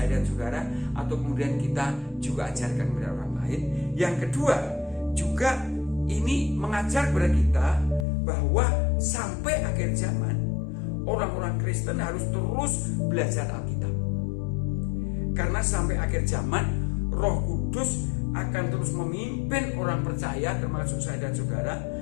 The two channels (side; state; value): right; drops out; at 8.1 s